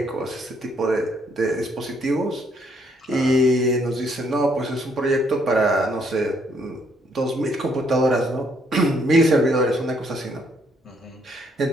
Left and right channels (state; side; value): normal; both; correlation 0.69